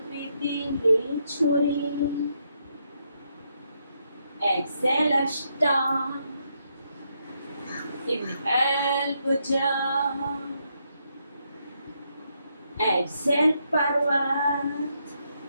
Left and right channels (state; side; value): inverted; both; correlation -0.78